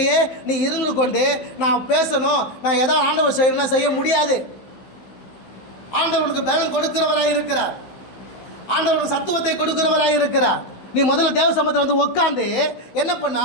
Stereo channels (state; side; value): late; right; 16 ms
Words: நீ இருந்து கொண்டு நான் பேசணும், நான் எதோ ஆண்டவர் செய்யணும்னா செய்ய முடியாது. ஆண்டவனுக்கு பலன் கொடுக்கிறவராக இருக்கிறார். ஆண்டவனுக்கு சத்துவத்தை கொடுக்கிறவராக இருக்கிறார். நீ முதல்ல தேவ சமூகத்தில் வந்து உட்காந்து என்ன பண்ணா,